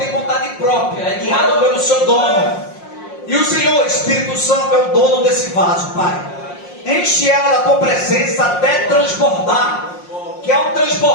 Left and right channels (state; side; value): late; right; 5.6 ms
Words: vontade própria, é guiado pelo seu dono. E o Senhor, Espírito Santo, é o dono desse vaso, Pai. Enche ela da tua presença até transbordar. Que ao